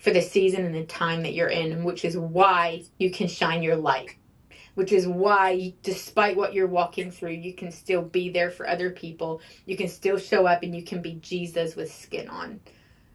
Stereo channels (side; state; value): both; identical; correlation 1.00